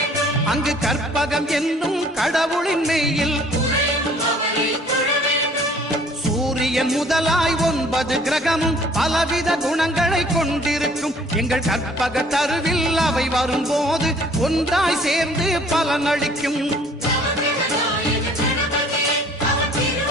அங்கு கற்பகம் என்னும் கடவுளின் மெய்யில். சூரியன் முதலாய் 9 கிரகமும் பலவித குணங்களை கொண்டிருக்கும். எங்கள் கற்பக தருவில் அவை வரும்போது ஒன்றாய் சேர்ந்து பலனளிக்கும்.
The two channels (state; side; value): normal; both; correlation 0.55